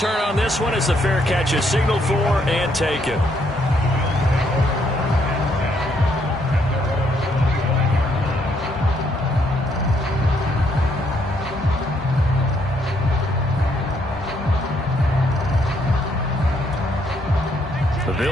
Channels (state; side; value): normal; both; correlation 0.72